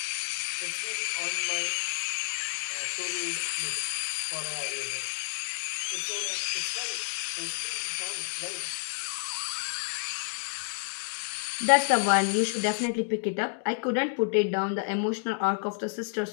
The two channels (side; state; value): right; silent; digital silence